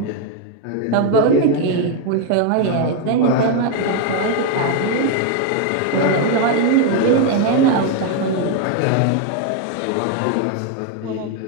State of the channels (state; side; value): different; both; correlation 0.01